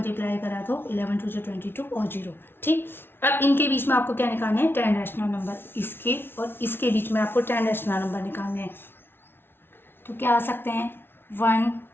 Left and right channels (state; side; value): late; right; 0.11 ms